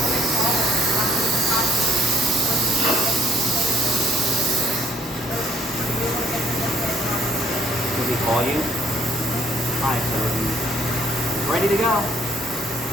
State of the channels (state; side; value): normal; both; correlation 0.63